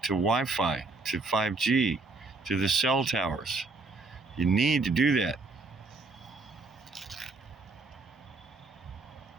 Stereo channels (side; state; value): left; quieter; 3.6 dB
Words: Wi-Fi, to 5G, to the cell towers. You need to do that.